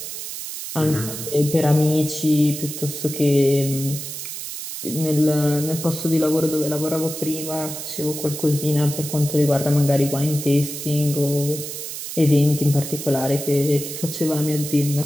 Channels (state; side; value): noise; right; hiss, 8 dB below the sound